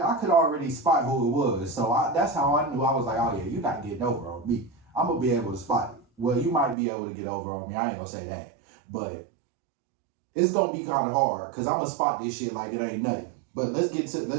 could already spot who it was. So that's how I knew. I was like, oh yeah, you're not getting over on me. I'm gonna be able to spot it. Well, you might be able to get over on me. I ain't gonna say that, but it's gonna be kind of hard because I'm gonna spot this shit like it ain't nothing. But let's get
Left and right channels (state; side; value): drops out; left; at 6.8 s